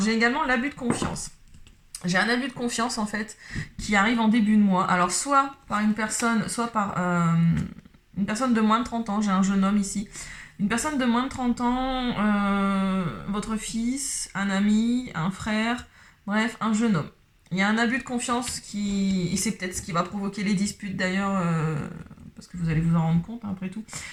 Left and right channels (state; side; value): identical; both; correlation 1.00